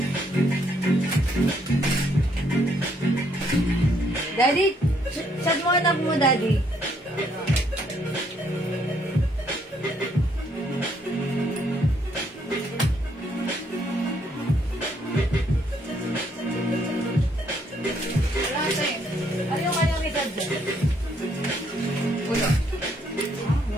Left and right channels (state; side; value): normal; both; correlation 0.70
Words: Daddy, chat mo anak mo, Daddy. Ano yung kanyang edad dyan? Wala.